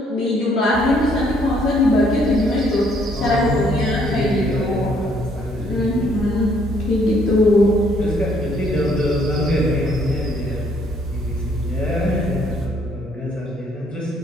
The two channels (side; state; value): both; normal; correlation 0.67